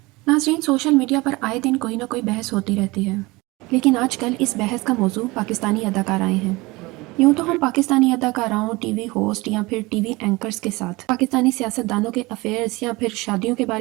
नाज़रीन, सोशल मीडिया पर आए दिन कोई ना कोई बहस होती रहती है, लेकिन आजकल इस बहस का मौजू पाकिस्तानी अदाकाराएँ हैं। यूँ तो हम पाकिस्तानी अदाकाराओं, टीवी होस्ट या फिर टीवी एंकर्स के साथ पाकिस्तानी सियासतदानों के अफेयर्स या फिर शादियों के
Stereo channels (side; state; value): left; quieter; 22.7 dB